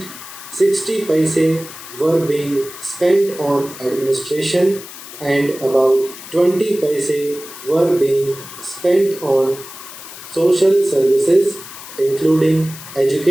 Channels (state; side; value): noise; left; hiss, 14 dB below the sound